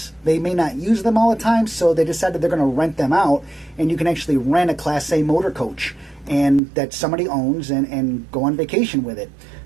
They may not use them all the time, so they decided they're going to rent them out, and you can actually rent a Class A motor coach and that somebody owns and go on vacation with it.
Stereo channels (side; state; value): left; drops out; at 6.6 s